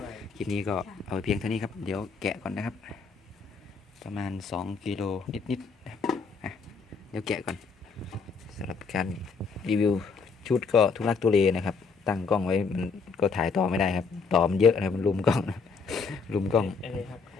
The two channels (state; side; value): quieter; right; 5.0 dB